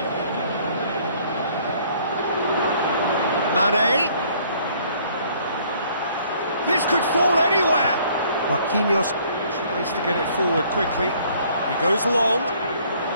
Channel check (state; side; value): inverted; both; correlation -0.60